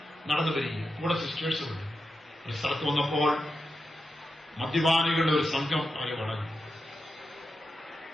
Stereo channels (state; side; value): normal; both; correlation 0.88